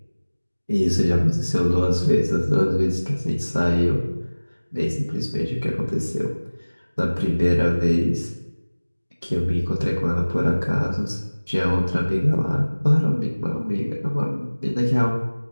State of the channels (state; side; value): inverted; both; correlation -1.00